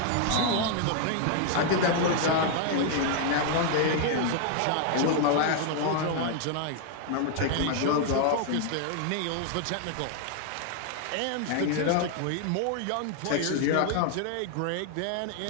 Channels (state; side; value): different; both; correlation 0.00